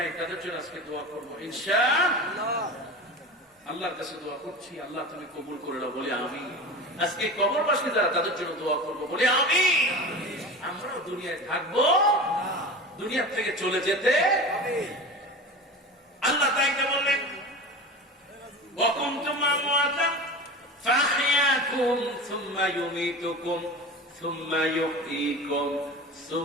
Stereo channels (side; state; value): both; normal; correlation 0.31